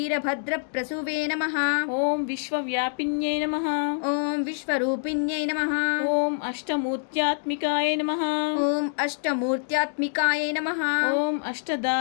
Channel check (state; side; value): silent; right; digital silence